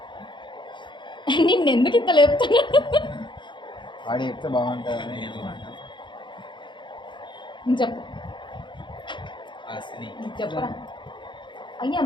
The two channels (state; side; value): late; right; 0.23 ms